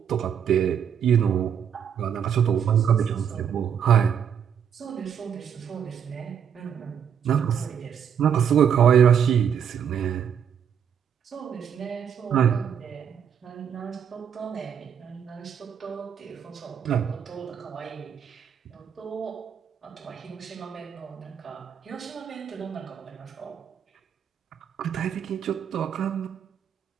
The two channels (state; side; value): quieter; left; 8.1 dB